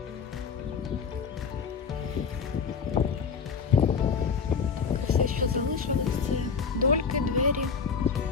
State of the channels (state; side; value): quieter; right; 5.8 dB